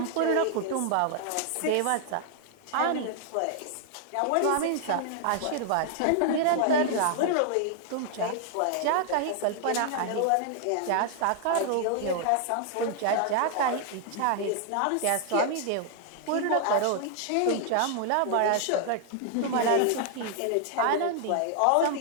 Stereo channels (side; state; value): both; different; correlation 0.00